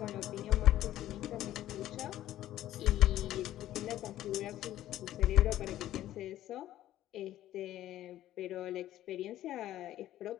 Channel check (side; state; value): right; quieter; 13.5 dB